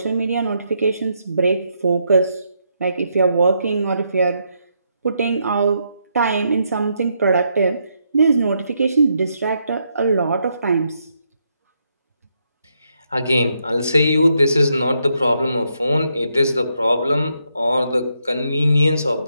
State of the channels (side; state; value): both; inverted; correlation -0.78